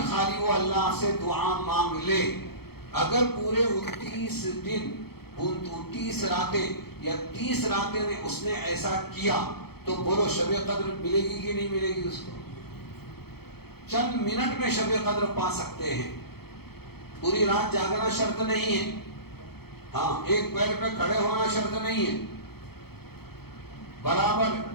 خالی وہ اللہ سے دعا مانگ لے. اگر پورے 29 دن 29 راتیں یا 30 راتیں میں اس نے ایسا کیا تو بولو شب قدر ملے گی کہ نہیں ملے گی اس کو؟ چند منٹ میں شب قدر پا سکتے ہیں. پوری رات جاگنا شرط نہیں ہے. ہاں، ایک پیر پہ کھڑے ہونا شرط نہیں ہے. برابر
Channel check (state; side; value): late; right; 0.96 ms